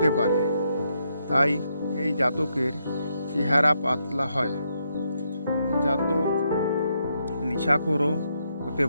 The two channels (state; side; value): inverted; both; correlation -0.78